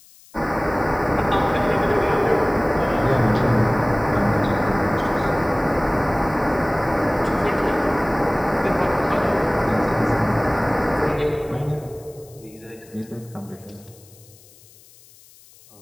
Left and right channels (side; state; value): left; noise; hiss, 25 dB below the sound